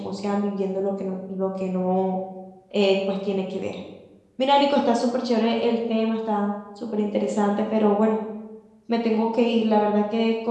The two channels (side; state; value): both; identical; correlation 1.00